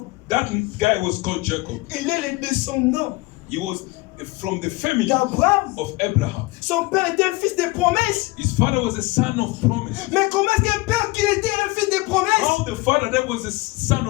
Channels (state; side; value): quieter; right; 22.4 dB